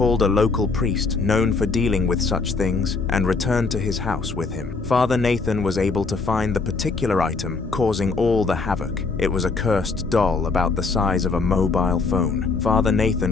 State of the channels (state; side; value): quieter; right; 4.2 dB